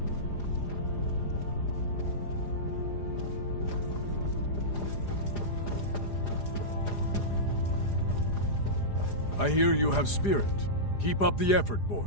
I hear you have spirit. Keep up the effort,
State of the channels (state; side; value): late; right; 4.9 ms